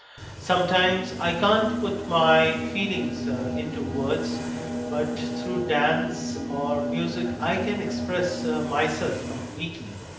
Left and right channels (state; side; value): identical; both; correlation 1.00